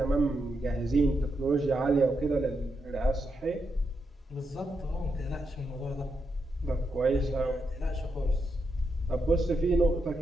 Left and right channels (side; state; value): both; normal; correlation 0.83